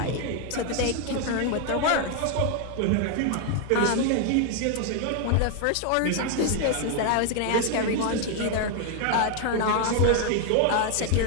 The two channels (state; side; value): different; both; correlation 0.00